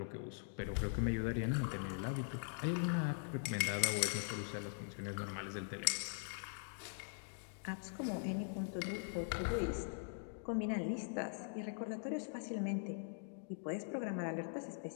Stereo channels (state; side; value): silent; right; digital silence